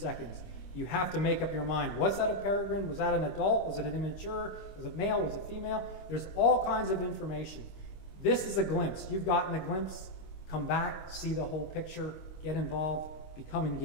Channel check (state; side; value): late; right; 25 ms